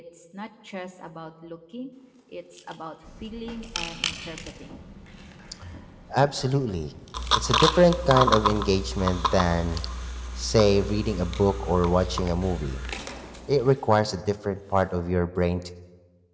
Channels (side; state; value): both; identical; correlation 1.00